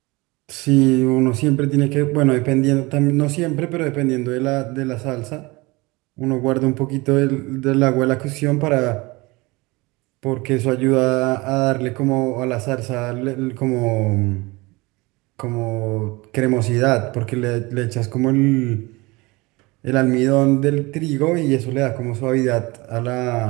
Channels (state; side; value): quieter; left; 23.7 dB